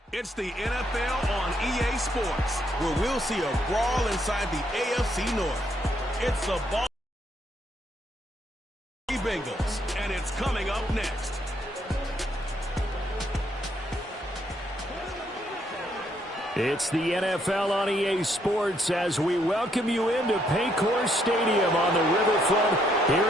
It's the NFL on EA Sports, where we'll see a brawl inside the AFC North. It's the Bengals, and it's coming up next. It's the NFL on EA Sports as we welcome you into Paycor Stadium on the riverfront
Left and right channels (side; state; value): both; normal; correlation 0.73